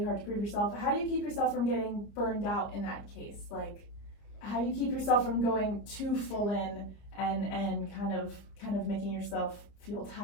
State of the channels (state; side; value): late; right; 30 ms